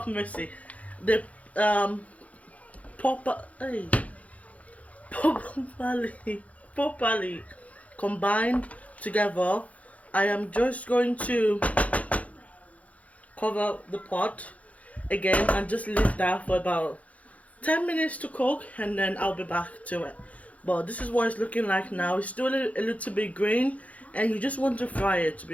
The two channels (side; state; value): right; late; 0.068 ms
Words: mercy, the properly combined together. I am just going to cover the pot again and just leave that for about 10 minutes to cook, and then I'll be back to it. But this is what it's looking like now. It's still a little bit green, and you just want to fry it, to